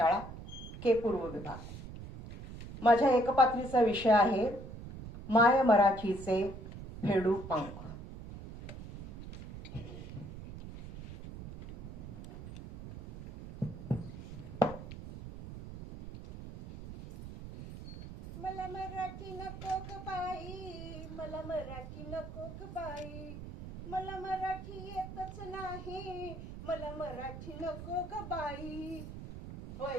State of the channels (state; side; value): noise; right; rumble, 11 dB below the sound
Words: के पूर्व विभाग. माझ्या एकपात्रीचा विषय आहे माय मराठीचे फेडू पंख. मला मराठी नको ग बाई, मला मराठी नको ग बाई, मला मराठी येतच नाही, मला मराठी नको ग बाई.